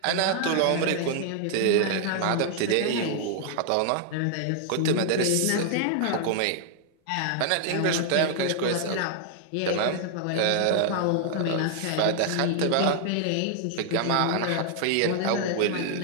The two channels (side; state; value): both; different; correlation 0.00